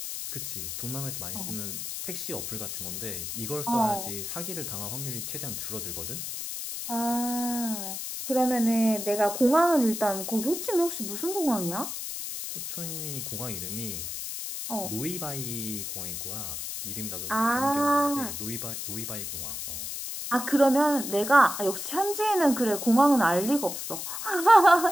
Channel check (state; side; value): noise; left; hiss, 6 dB below the sound